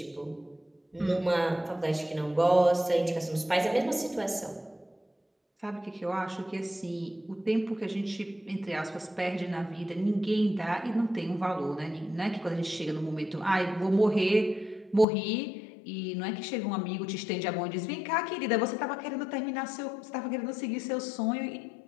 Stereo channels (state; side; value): drops out; right; at 15.1 s